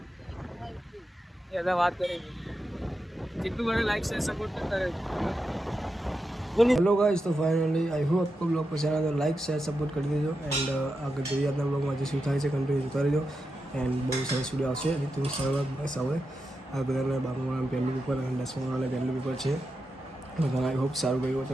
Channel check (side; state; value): both; normal; correlation 0.88